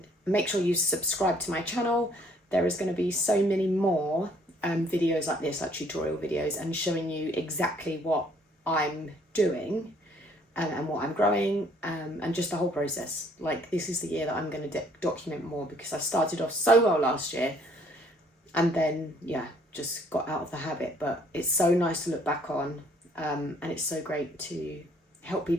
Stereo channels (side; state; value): both; normal; correlation 0.62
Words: Make sure you subscribe to my channel. There is going to be so many more videos like this, like tutorial videos, and showing you exactly what I'm doing and what I'm growing, and just the whole process. Like, this is the year that I'm going to document more, because I started off so well last year and then just got out of the habit. But it's so nice to look back on, and it's so great to help